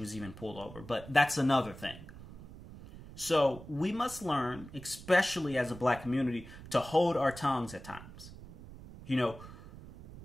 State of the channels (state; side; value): noise; right; rumble, 16 dB below the sound